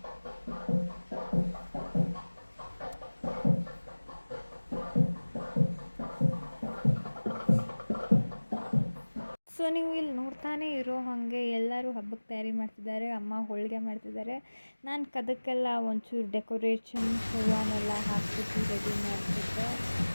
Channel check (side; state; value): both; inverted; correlation -1.00